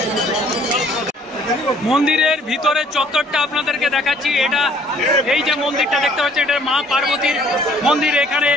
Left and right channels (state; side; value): normal; both; correlation 0.58